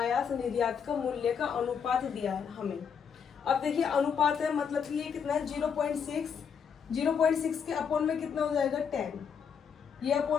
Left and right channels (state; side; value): quieter; right; 6.9 dB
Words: निर्यात का मूल्य का अनुपात दिया है हमें। अब देखिए अनुपात है, मतलब कि ये कितना है 0.6। 0.6 के अपॉन में कितना हो जाएगा 10। ये